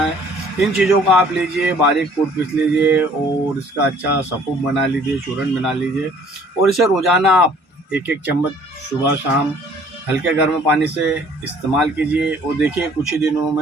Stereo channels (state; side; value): normal; both; correlation 0.56